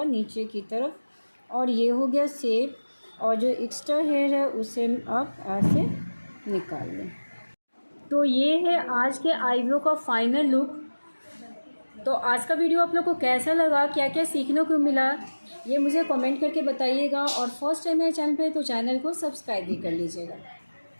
नीचे की तरफ, और ये हो गया शेप। और जो एक्स्ट्रा हेयर है उसे आप ऐसे निकाल लें। तो ये है आज के आईब्रो का फाइनल लुक। तो आज का वीडियो आप लोग को कैसा लगा, क्या क्या सीखने को मिला, ये मुझे कमेंट करके बताइएगा। और फर्स्ट टाइम मेरे चैनल पे तो चैनल को सब्सक्राइब भी कर लीजिएगा।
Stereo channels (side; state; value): both; inverted; correlation -1.00